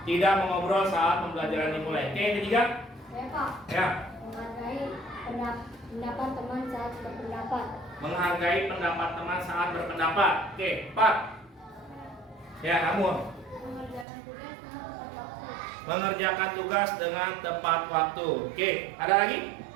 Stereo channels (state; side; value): drops out; left; at 14.1 s